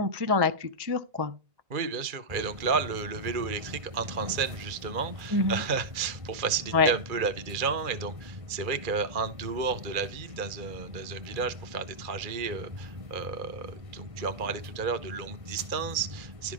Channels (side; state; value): left; late; 2.3 ms